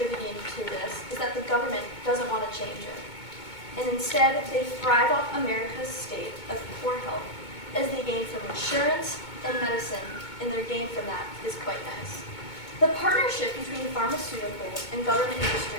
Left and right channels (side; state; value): right; late; 2.2 ms